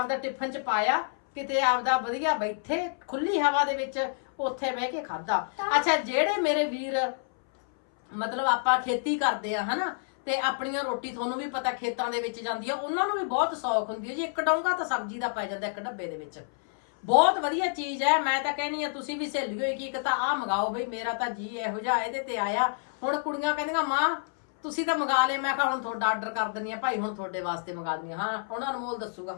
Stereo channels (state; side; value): silent; right; 58 dB below the other